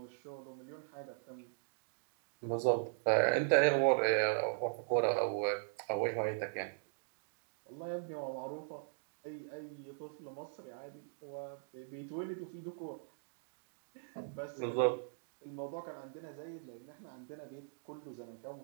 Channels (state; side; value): silent; left; digital silence